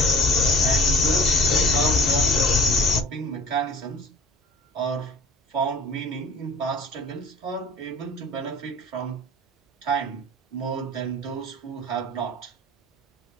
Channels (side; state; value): both; normal; correlation 0.46